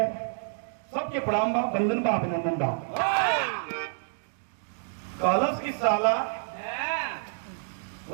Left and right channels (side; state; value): left; silent; digital silence